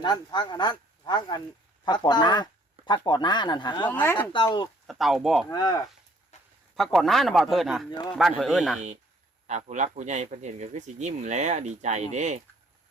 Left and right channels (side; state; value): both; normal; correlation 0.61